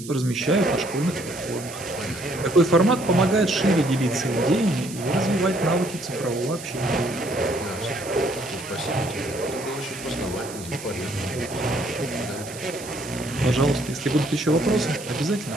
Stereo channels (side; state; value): right; noise; hiss, 14 dB below the sound